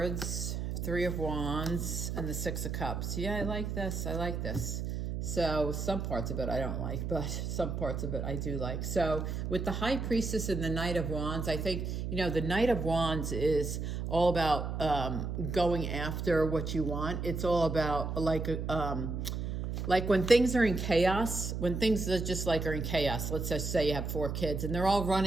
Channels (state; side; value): noise; right; hum, 3 dB below the sound